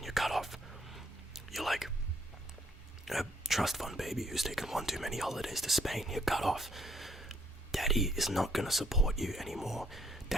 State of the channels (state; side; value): normal; both; correlation 0.68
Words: you're cut off. You're like a trust fund baby who's taken one too many holidays to Spain. You're cut off. Daddy is not going to support you anymore.